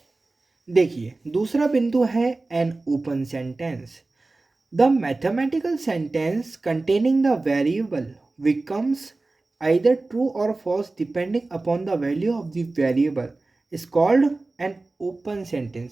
देखिए, दूसरा बिंदु है an open sentence. The mathematical sentence containing the variable becomes either true or false depending upon the value of the variable is called an open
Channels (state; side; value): quieter; left; 3.3 dB